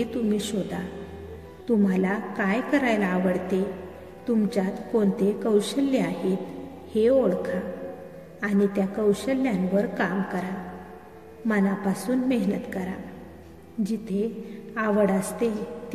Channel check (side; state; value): both; identical; correlation 1.00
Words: तुम्ही शोधा. तुम्हाला काय करायला आवडते, तुमच्यात कोणते कौशल्य आहेत हे ओळखा आणि त्या कौशल्यांवर काम करा. मनापासून मेहनत करा. जिथे आवड असते